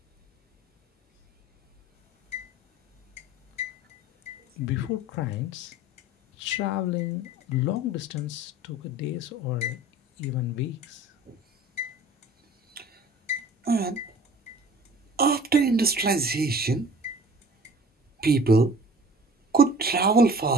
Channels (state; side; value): normal; both; correlation 0.45